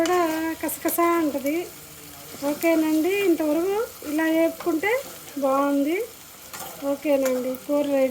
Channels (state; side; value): identical; both; correlation 1.00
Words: కసకసా ఉంటుంది. ఓకేనండి, ఇంతవరకు ఇలా వేపుకుంటే బాగుంది. ఓకేనండి, కూర